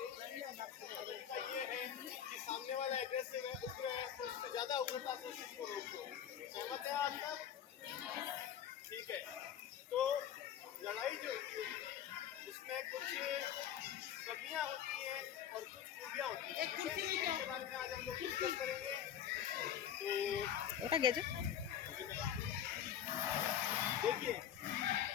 तरीका ये है कि सामने वाला एग्रेसिव है, उग्र है, तो उससे ज़्यादा उग्रता से उसको रोक दो। सहमत है आप सब? ठीक है। तो लड़ाई जो होती है उसमें कुछ कमियां होती हैं और कुछ खूबियां होती हैं। इसके बारे में आज हम लोग डिस्कस करेंगे। तो देखिए,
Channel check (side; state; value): right; quieter; 9.6 dB